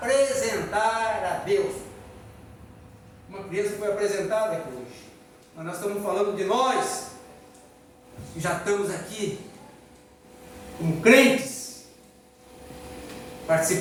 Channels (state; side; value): identical; both; correlation 1.00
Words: a Deus. Uma criança foi apresentada aqui hoje, mas nós estamos falando de nós, que já estamos aqui, como crentes,